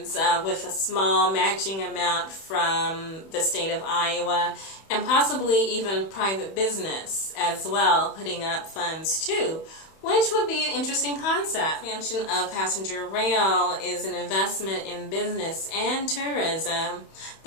with a small matching amount from the state of Iowa, and possibly even private business as well, putting up funds too, which would be an interesting concept. Expansion of passenger rail is an investment in business and tourism.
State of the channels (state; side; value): late; right; 31 ms